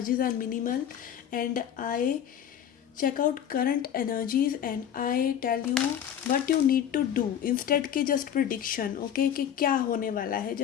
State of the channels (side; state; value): right; quieter; 9.5 dB